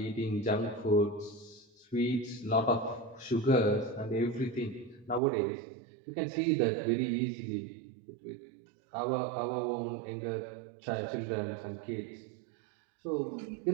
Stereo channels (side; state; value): left; drops out; at 5.2 s